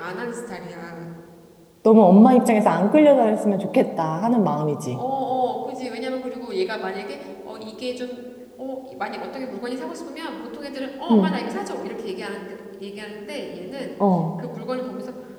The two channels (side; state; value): both; identical; correlation 1.00